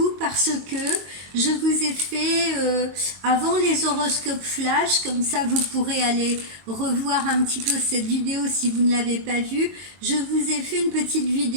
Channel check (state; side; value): late; left; 22 ms